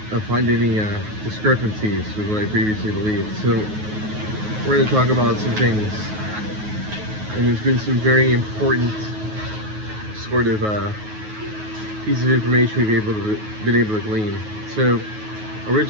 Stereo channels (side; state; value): left; late; 9.4 ms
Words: find any discrepancies with what I previously believed. So we're going to talk about some things, and there's been some very important sort of pieces of information we've been able to glean. So